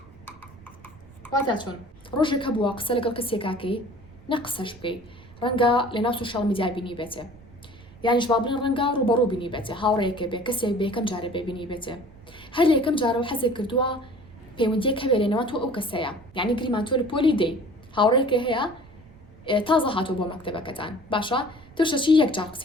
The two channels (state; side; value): noise; right; rumble, 22 dB below the sound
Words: واتە چۆن ڕۆژێک هەبووە قسە لەگەڵ کەسێکاکەی نە قسەش بکەی ڕەنگە لە ناو سوشال میدیا بینی بێتێ، یانیش با بڵێن ڕەنگە ڕوبەڕوو بینی بێتێ، هاوڕێیەکە بێ کەسێک بێ یەکەم جارە بێبینی بێتێ، هەر لە یەکەم جارەوە حەزێک کردووە پەیوەندیەک هەبێ لێنەوە تۆ ئەو کەسەیە، یعنی گریمان تۆ لە پۆلی دەی هاوڕێیەکە هەیە تازە هاتوو بۆ مەکتەبەکەتان باشە توشەچی یەک جار